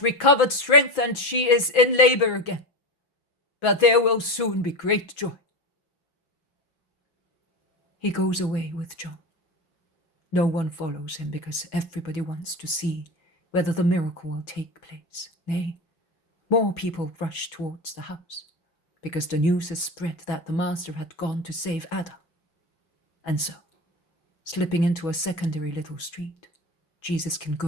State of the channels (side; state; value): right; late; 6.3 ms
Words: recovered strength and she is in labor again, but there will soon be great joy." He goes away with John. No one follows him because everybody wants to see whether the miracle will take place. Nay, more people rush towards the house because the news has spread that the master had gone to save Ada. And so, slipping into a secondary little street, Jesus can